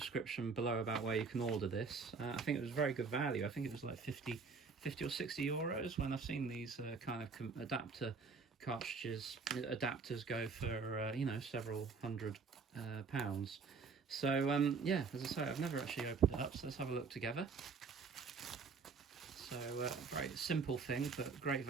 below about where you can order this. I think it was very good value. I think it was like 50 or 60 euros when I've seen these kind of adapter cartridges. Adapters go for, several hundred pounds. So, yeah, as I say, I've never actually opened it up, so let's have a look together. So very simple thing, but great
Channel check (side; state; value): left; quieter; 4.8 dB